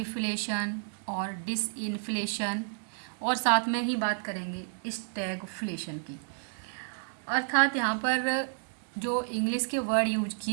और डिसइन्फ्लेशन, और साथ में ही बात करेंगे स्टैगफ्लेशन की। अर्थात यहाँ पर जो इंग्लिश के वर्ड यूज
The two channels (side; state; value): left; silent; 57 dB below the other